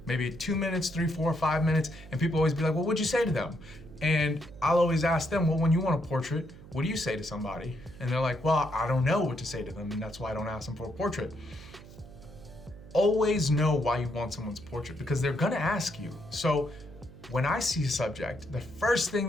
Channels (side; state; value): right; noise; hum, 18 dB below the sound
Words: maybe 2 minutes, 3, 4, 5 minutes, and people always be like, well, what'd you say to them? And I'll always ask them, well, when you want a portrait, what do you say to somebody? And they're like, well, I don't know what to say to them, and that's why I don't ask them for a portrait. Always know why you want someone's portrait, because they're gonna ask you. So when I see a subject, the first thing